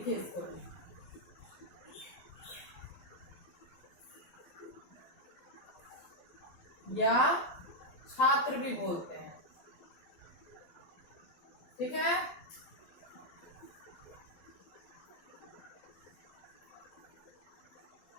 इसको, या छात्र भी बोलते हैं, ठीक है।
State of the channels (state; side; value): late; right; 12 ms